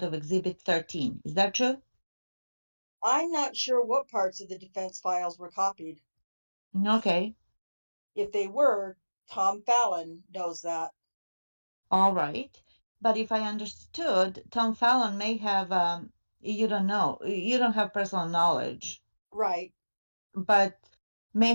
of Exhibit 13. Is that true? I'm not sure what parts of the defense files were copied. Okay, If they were, Tom Fallon knows that. all right. But if I understood, Tom Fallon may have, you don't know, you don't have personal knowledge, Right. but may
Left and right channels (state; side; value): inverted; both; correlation -1.00